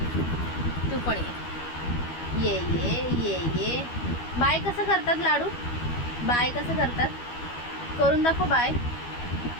तू पण ये ये ये ये ये. बाय कसं करतात लाडू, बाय कसं करतात करून दाखव बाय.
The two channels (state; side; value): late; right; 12 ms